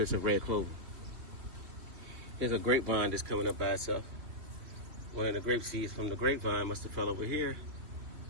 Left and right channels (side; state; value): left; late; 3.2 ms